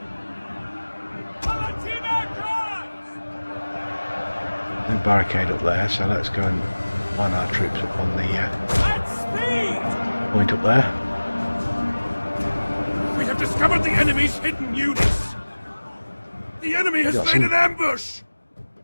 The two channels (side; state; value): both; inverted; correlation -1.00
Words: No barricade up there, so let's go and line our troops up on the point up there. We have discovered the enemy's hidden units. The enemy has Got laid some- an ambush.